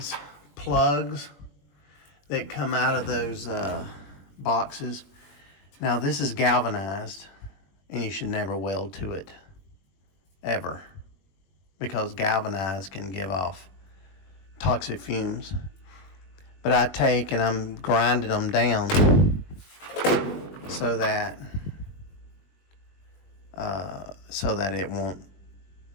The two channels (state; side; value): late; right; 21 ms